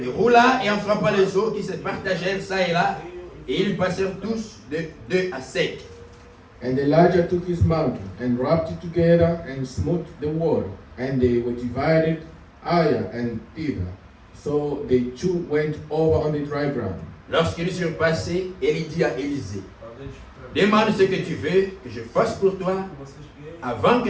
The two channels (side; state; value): both; identical; correlation 1.00